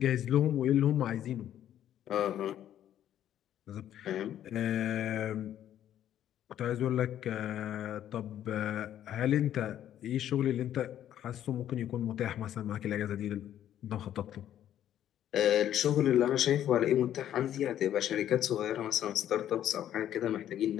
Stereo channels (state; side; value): quieter; right; 11.2 dB